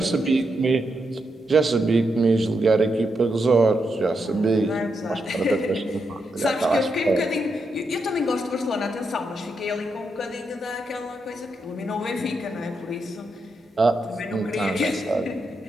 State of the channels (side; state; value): both; normal; correlation 0.83